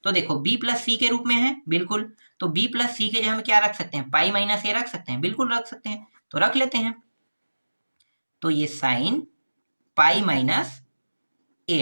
तो देखो b प्लस सी के रूप में है, बिल्कुल, तो b प्लस सी के जगह में क्या रख सकते हैं, पाई माइनस a रख सकते हैं, बिल्कुल रख सकते हैं, तो रख लेते हैं, तो ये साइन पाई माइनस a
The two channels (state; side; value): inverted; both; correlation -1.00